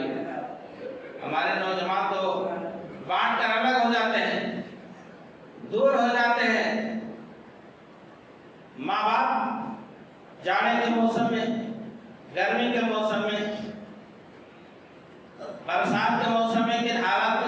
ہمارے نوجوان تو بانٹ کر الگ ہو جاتے ہیں، دور ہو جاتے ہیں. ماں باپ جاڑے کے موسم میں، گرمی کے موسم میں، برسات کے موسم میں کن حالات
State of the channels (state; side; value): identical; both; correlation 1.00